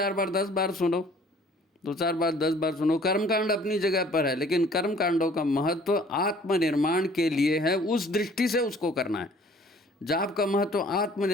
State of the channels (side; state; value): both; normal; correlation 0.54